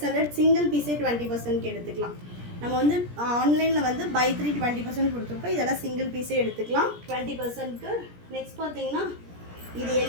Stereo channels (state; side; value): late; left; 17 ms